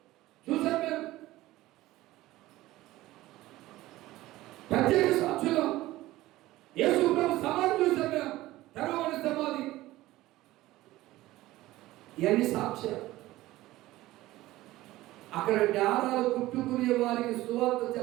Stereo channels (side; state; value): left; quieter; 17.1 dB